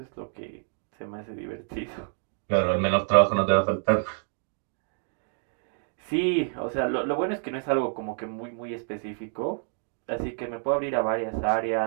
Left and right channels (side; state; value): left; silent; 57 dB below the other